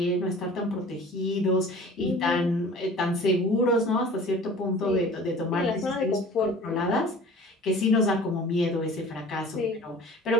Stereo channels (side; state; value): both; normal; correlation 0.44